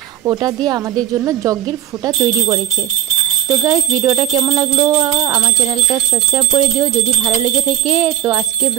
ওটা দিয়ে আমাদের জন্য যজ্ঞের ফোঁটা তৈরি করেছে। তো গাইস, ভিডিওটা কেমন লাগলো আমার চ্যানেলটা সাবস্ক্রাইব করে দিও যদি ভালো লেগে থাকে। তো আজকে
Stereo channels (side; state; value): left; quieter; 11.4 dB